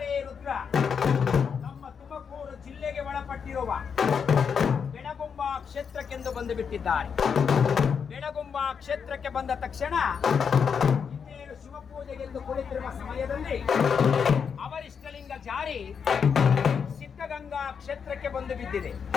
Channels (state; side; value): quieter; right; 6.6 dB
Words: ರುದ್ರ ನಮ್ಮ ತುಮಕೂರು ಜಿಲ್ಲೆಗೆ ಒಳಪಟ್ಟಿರುವ ಬೆಳಗುಂಬ ಕ್ಷೇತ್ರಕ್ಕೆಂದು ಬಂದು ಬಿಟ್ಟಿದ್ದಾರೆ. ಬೆಳಗುಂಬ ಕ್ಷೇತ್ರಕ್ಕೆ ಬಂದ ತಕ್ಷಣ ಇನ್ನೇನು ಶಿವಪೂಜೆಗೆಂದು ಕುಳಿತಿರುವ ಸಮಯದಲ್ಲಿ ಅವರಿಷ್ಟಲಿಂಗ ಜಾರಿ ಸಿದ್ಧಗಂಗಾ ಕ್ಷೇತ್ರಕ್ಕೆ ಬಂದು ಬಿದ್ದಿದೆ.